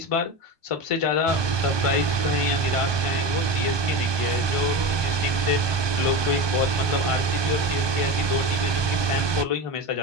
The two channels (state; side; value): late; left; 1.2 ms